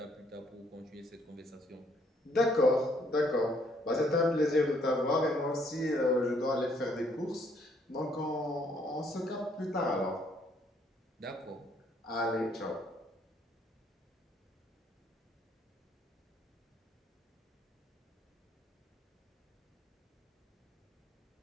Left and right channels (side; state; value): both; normal; correlation 0.67